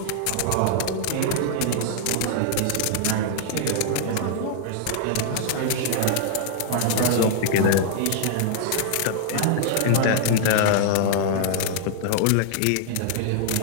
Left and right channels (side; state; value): both; different; correlation -0.01